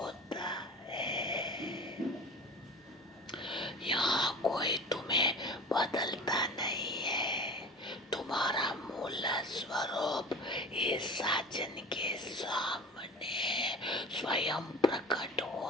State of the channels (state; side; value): normal; both; correlation 0.37